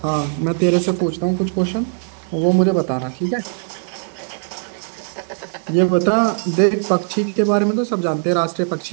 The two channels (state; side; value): silent; left; digital silence